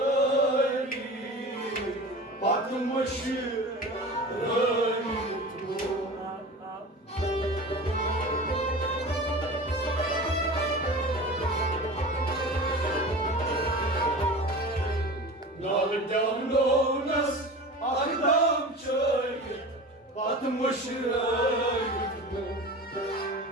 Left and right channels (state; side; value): normal; both; correlation 0.34